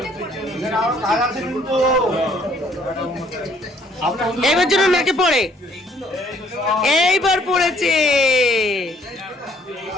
এবার জন্য নাকে পড়ে, এইবার পড়েছে।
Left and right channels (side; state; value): both; normal; correlation 0.63